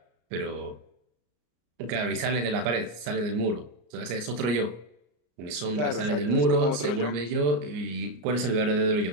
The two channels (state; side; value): late; left; 33 ms